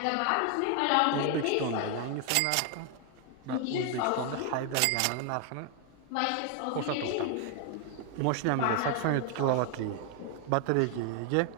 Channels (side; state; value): both; different; correlation 0.00